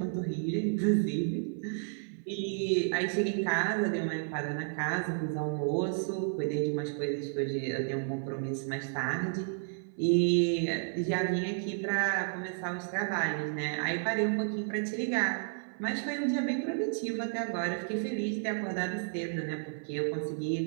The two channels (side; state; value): left; silent; 56 dB below the other